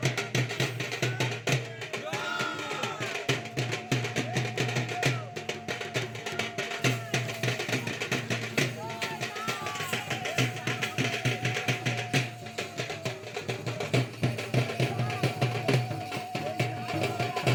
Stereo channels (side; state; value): both; identical; correlation 1.00